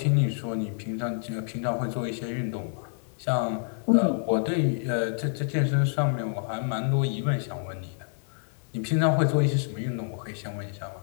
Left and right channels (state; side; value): silent; right; 60 dB below the other